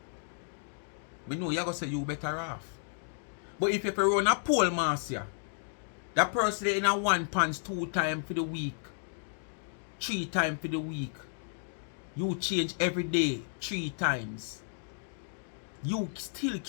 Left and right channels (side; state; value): right; silent; digital silence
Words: We know you're going to say you better off. But if you run a pole master, that person in a 1 pants 2 times for the week, 3 times for the week, you change every day 3 times. You still